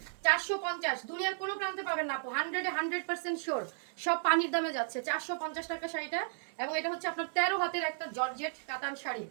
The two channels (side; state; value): left; silent; 55 dB below the other